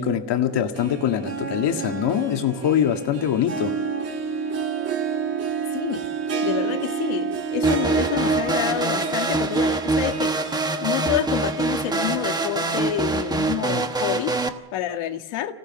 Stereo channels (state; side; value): normal; both; correlation 0.18